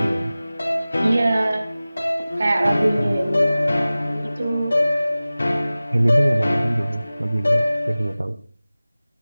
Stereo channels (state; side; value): inverted; both; correlation -0.97